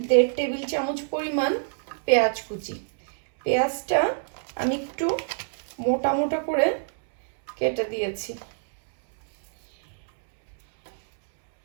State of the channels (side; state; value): left; silent; 61 dB below the other